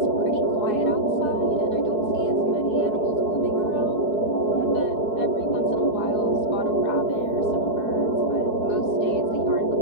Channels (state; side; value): late; right; 4.7 ms